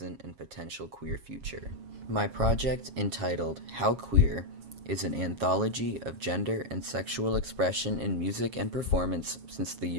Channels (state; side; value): late; left; 7.3 ms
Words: and potential queer future. My project, entitled How Queer, is an anthology of gender and sexual expression in music and performance since the